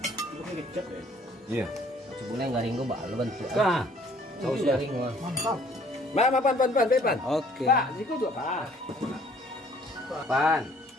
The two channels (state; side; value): normal; both; correlation 0.58